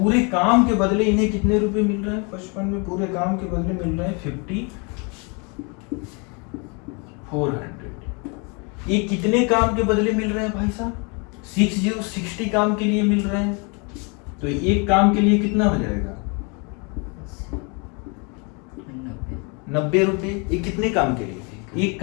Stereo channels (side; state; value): right; quieter; 32.9 dB